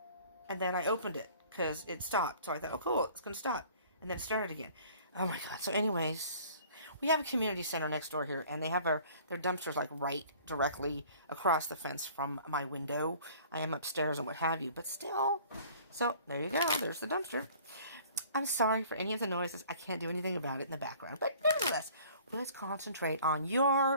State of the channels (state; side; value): inverted; both; correlation -0.51